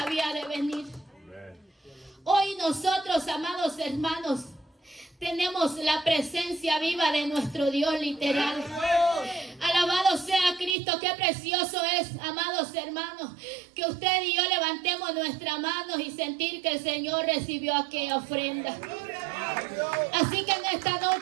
de venir. Hoy nosotros, amados hermanos, tenemos la presencia viva de nuestro Dios literal. Alabado sea Cristo, qué precioso es, amados hermanos, que usted y yo levantemos nuestras manos y sentir que el Señor recibió aquella ofrenda. Así que en esta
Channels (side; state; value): left; drops out; at 10.8 s